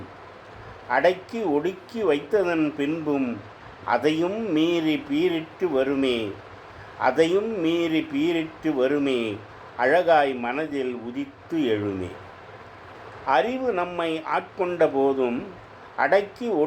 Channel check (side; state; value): both; identical; correlation 1.00